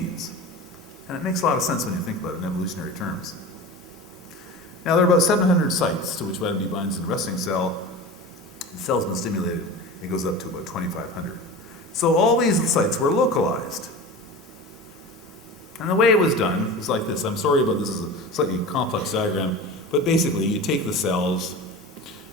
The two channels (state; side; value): normal; both; correlation 0.32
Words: And it makes a lot of sense when you think about it in evolutionary terms. Now, there are about 700 sites to which vitamin D binds in a resting cell. The cell's been stimulated. It goes up to about 2,500. So all these sites were localized. And the way it was done was like this. I'm sorry about this, is a slightly complex diagram, but basically you take the cells